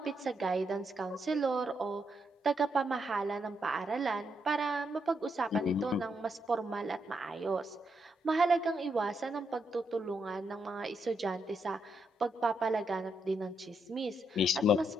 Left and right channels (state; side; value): normal; both; correlation 0.80